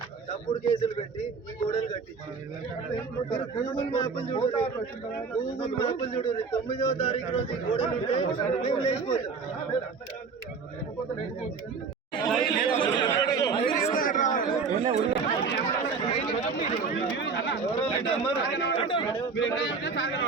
తప్పుడు కేసులు పెట్టి ఈ గోడలు కట్టించి గూగుల్ మ్యాప్లు చూడండి. 9వ తారీఖు రోజు ఈ గోడలు ఉంటే మేము లేచిపోతాం.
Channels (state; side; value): quieter; left; 5.0 dB